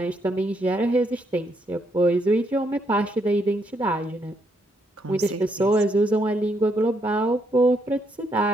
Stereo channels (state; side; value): normal; both; correlation 0.75